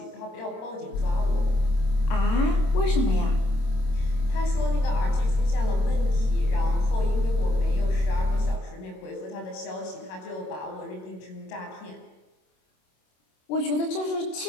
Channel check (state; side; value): late; right; 27 ms